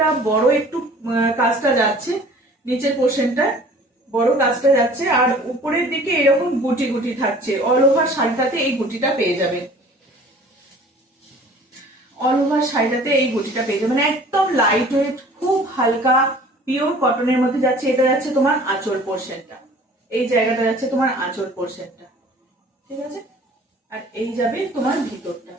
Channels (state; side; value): normal; both; correlation 0.49